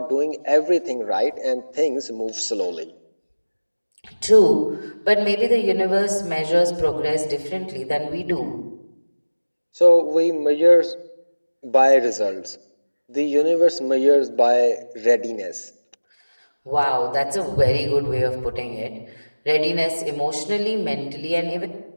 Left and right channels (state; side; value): inverted; both; correlation -1.00